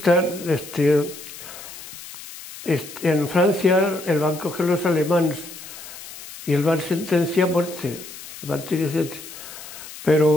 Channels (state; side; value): noise; left; hiss, 14 dB below the sound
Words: en Francia, el van a coger los alemanes y el van a sentenciar a muerte.